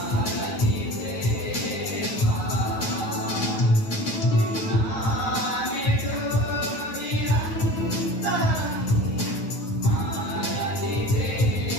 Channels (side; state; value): right; late; 9.3 ms